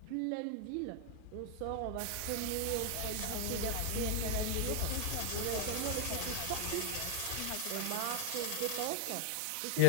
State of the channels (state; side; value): different; both; correlation 0.00